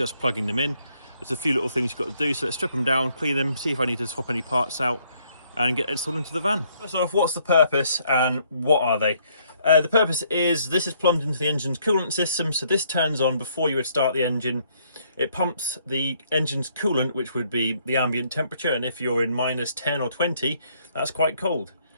plugging them in. There's a few little things you've got to do, so let's strip them down, clean them, see if I need to swap any parts out and get it installed into the van. First off, what's the purpose and what are they? The purpose is this is plumbed into the engine's coolant system, so this turns on before you would start the engine. It pumps the engine's coolant, which would be the ambient temperature, and if you're in minus 10 or 20, that's quite cold.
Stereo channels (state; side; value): inverted; both; correlation -0.68